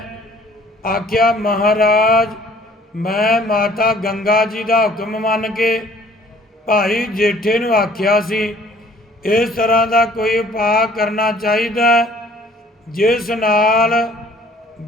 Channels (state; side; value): normal; both; correlation 0.55